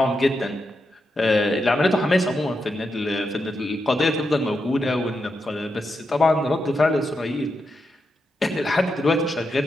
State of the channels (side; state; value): both; normal; correlation 0.85